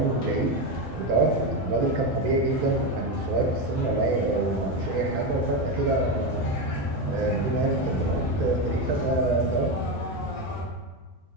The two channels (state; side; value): normal; both; correlation 0.13